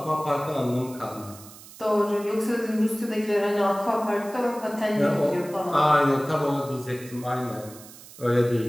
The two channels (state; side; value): noise; right; hiss, 18 dB below the sound